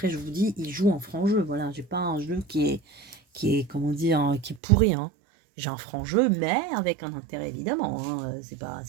je vous dis, il joue en franc jeu. Voilà, j'ai pas un jeu qui est comment dire, qui est pourri, hein. J'ai un franc jeu, mais avec un intérêt évidemment, hein. C'est pas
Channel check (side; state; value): left; drops out; at 4.6 s